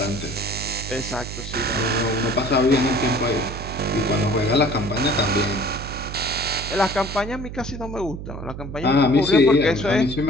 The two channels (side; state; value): right; noise; hum, 9 dB below the sound